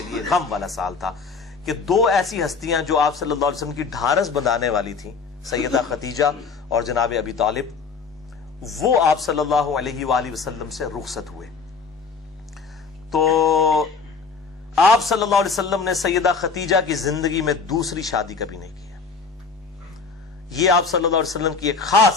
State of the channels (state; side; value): quieter; right; 4.9 dB